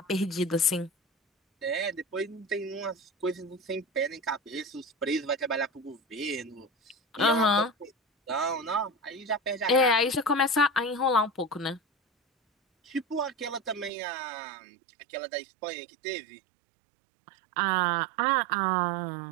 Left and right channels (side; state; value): left; drops out; at 13.9 s